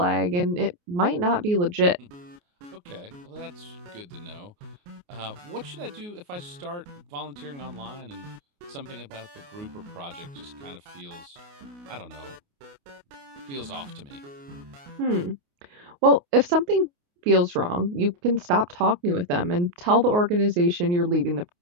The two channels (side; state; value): left; late; 28 ms